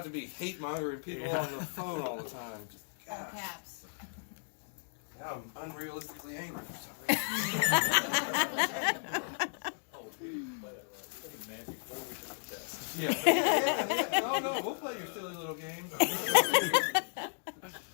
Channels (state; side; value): silent; right; digital silence